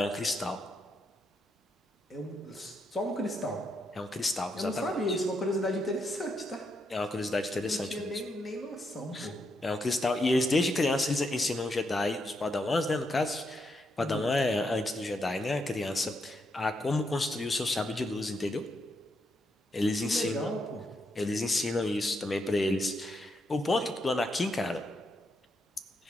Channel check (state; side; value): normal; both; correlation 0.80